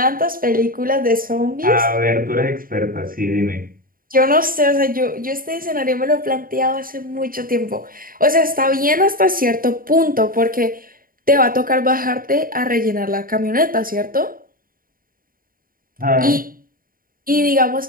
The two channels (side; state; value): left; late; 0.41 ms